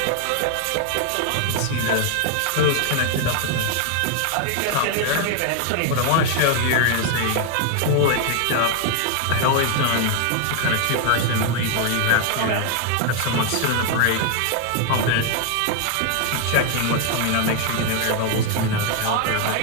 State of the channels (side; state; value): both; different; correlation 0.00